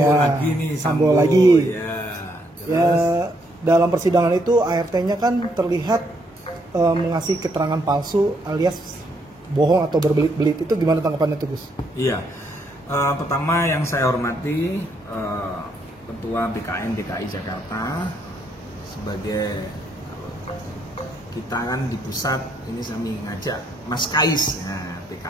lagi nih. Sambo lagi. Ya, Ya, dalam persidangan itu ART-nya kan terlihat mengasih keterangan palsu alias bohong atau berbelit-belit. Itu gimana tanggapannya tuh, Gus? Iya. Pertama yang saya hormati Ketua BKN DKI Jakarta sebagai kita kan di pusat ini kami ngajak Mas Kais, nah,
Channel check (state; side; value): normal; both; correlation 0.73